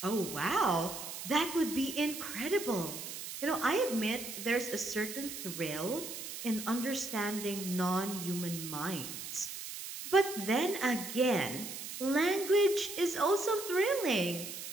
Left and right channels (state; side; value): noise; right; hiss, 8 dB below the sound